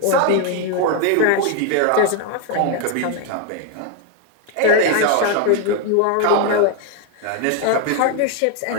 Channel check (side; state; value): both; different; correlation 0.01